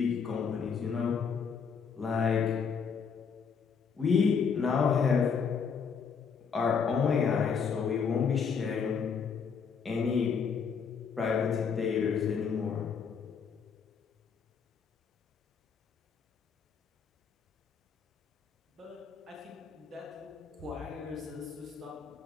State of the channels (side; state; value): right; quieter; 6.2 dB